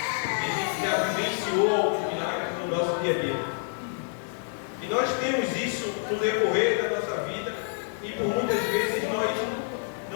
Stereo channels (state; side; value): silent; right; digital silence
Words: a gente já vivenciou alguns milagres no nosso dia a dia. E nós temos isso no decorrer da nossa vida e por muitas vezes nós